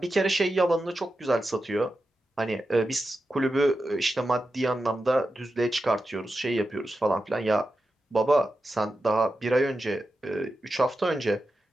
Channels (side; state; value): both; normal; correlation 0.90